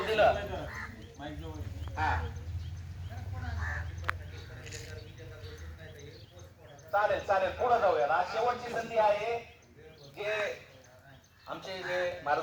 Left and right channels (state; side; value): identical; both; correlation 1.00